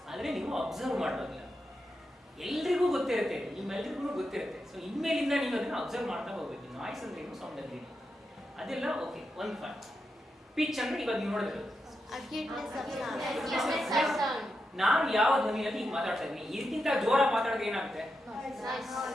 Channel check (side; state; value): both; normal; correlation 0.87